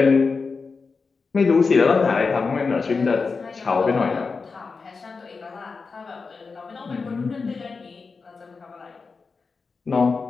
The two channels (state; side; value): quieter; right; 4.6 dB